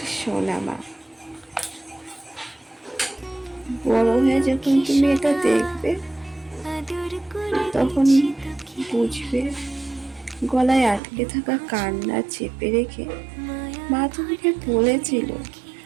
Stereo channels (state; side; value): drops out; left; at 11.0 s